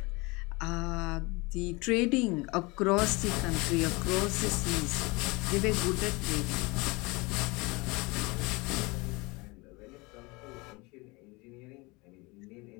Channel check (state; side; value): quieter; right; 25.3 dB